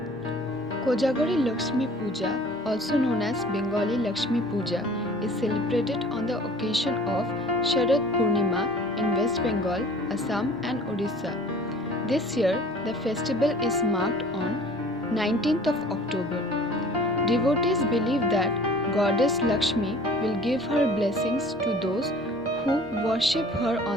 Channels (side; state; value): both; normal; correlation 0.48